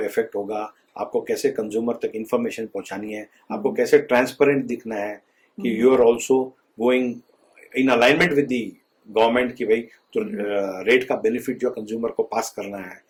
इफेक्ट होगा, आपको कैसे कंज्यूमर तक इंफॉर्मेशन पहुंचानी है, आपको कैसे ट्रांसपेरेंट दिखना है कि you are also going in alignment with the government, की भाई तो रेट का बेनिफिट जो कंज्यूमर को पास करना है,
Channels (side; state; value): both; identical; correlation 1.00